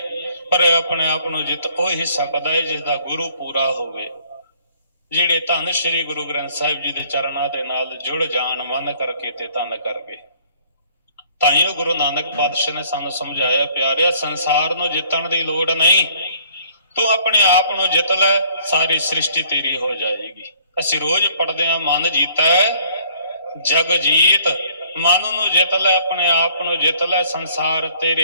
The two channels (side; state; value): both; inverted; correlation -0.60